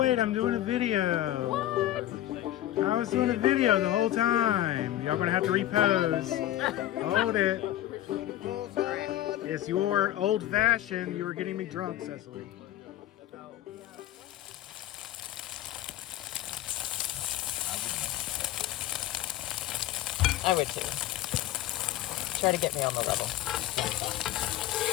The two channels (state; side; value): quieter; right; 13.7 dB